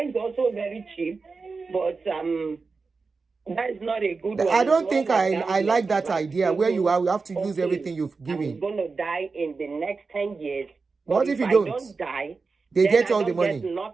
is also very cheap, but that is not a good one. I It's don't more think like I like that gambling, idea where you have to use okay, everything you've I'm given. going to die in the next 10 years. But What if you I don't? don't die, They then get I all the don't get money.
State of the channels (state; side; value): quieter; left; 4.4 dB